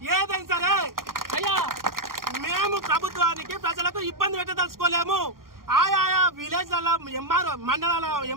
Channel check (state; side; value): late; left; 0.91 ms